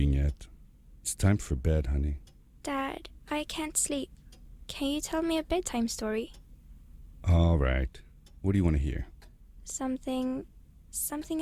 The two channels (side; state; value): both; identical; correlation 1.00